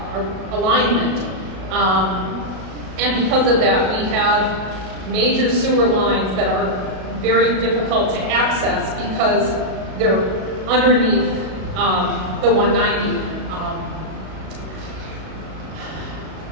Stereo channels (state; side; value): late; left; 37 ms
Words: alignment. And because of that, we have major sewer lines that are very difficult to access because they're underneath the 190.